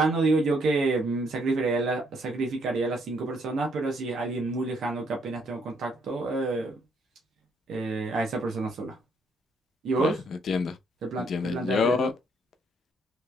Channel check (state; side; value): normal; both; correlation 0.70